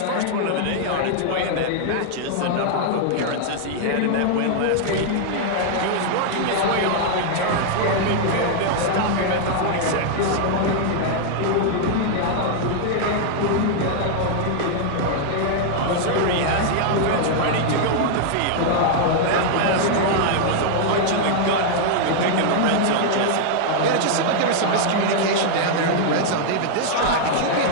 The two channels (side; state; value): both; different; correlation -0.01